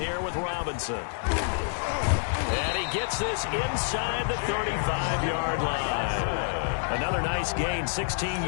with Robinson. And he gets this inside the 35-yard line. Another nice gain, 16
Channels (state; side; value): silent; right; digital silence